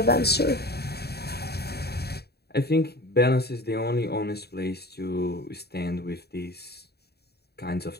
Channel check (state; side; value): late; right; 0.47 ms